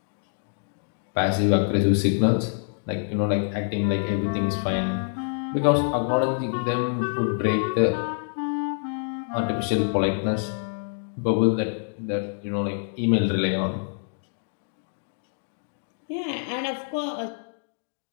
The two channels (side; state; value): right; silent; digital silence